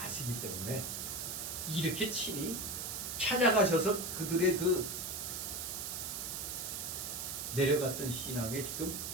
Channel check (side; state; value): right; noise; hiss, 4 dB below the sound